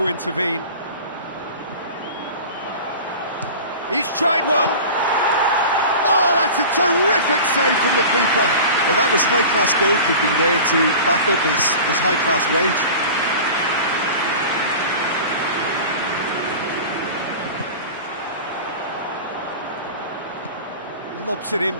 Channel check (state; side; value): inverted; both; correlation -0.36